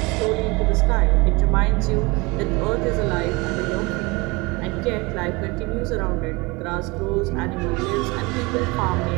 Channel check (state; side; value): quieter; left; 25.2 dB